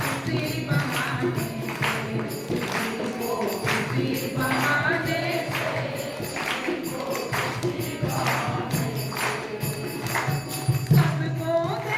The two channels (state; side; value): identical; both; correlation 1.00